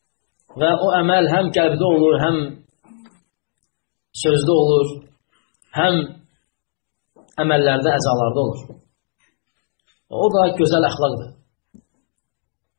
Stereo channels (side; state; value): right; silent; 66 dB below the other